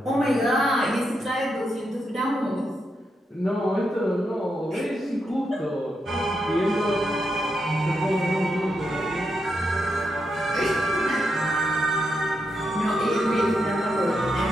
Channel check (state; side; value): normal; both; correlation 0.83